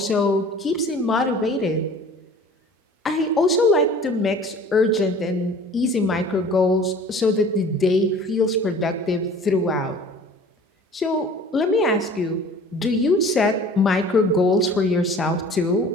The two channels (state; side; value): normal; both; correlation 0.46